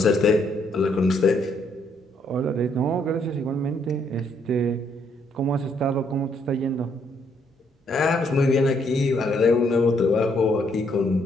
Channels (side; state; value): both; normal; correlation 0.71